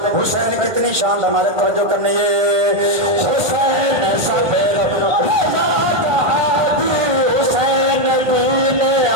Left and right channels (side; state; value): left; late; 1.3 ms